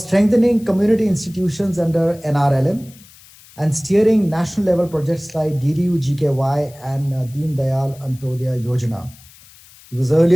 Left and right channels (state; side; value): noise; left; hiss, 24 dB below the sound